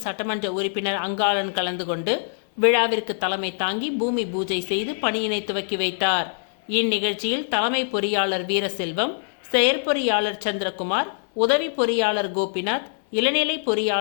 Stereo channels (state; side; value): silent; right; digital silence